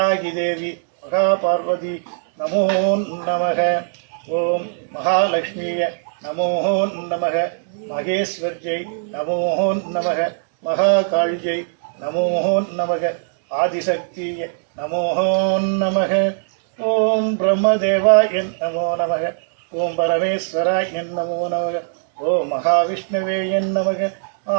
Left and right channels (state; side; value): silent; left; digital silence